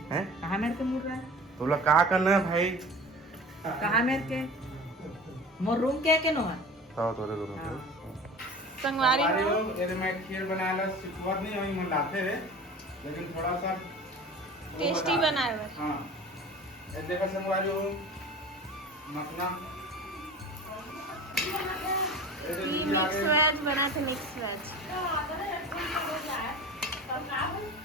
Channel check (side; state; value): both; normal; correlation 0.38